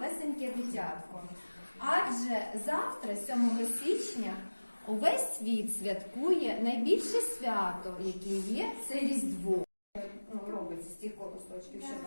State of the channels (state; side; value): inverted; both; correlation -1.00